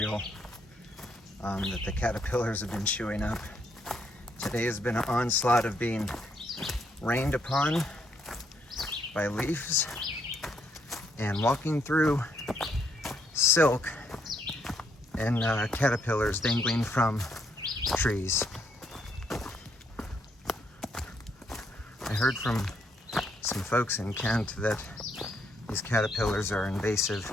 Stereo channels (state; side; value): normal; both; correlation 0.74